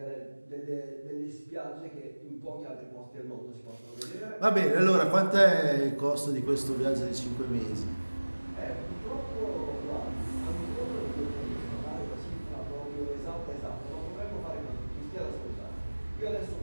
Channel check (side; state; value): both; inverted; correlation -1.00